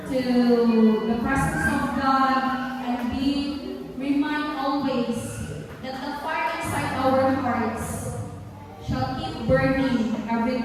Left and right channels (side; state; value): both; identical; correlation 1.00